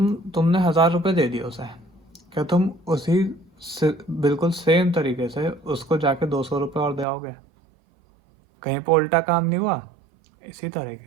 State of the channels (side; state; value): left; drops out; at 7.1 s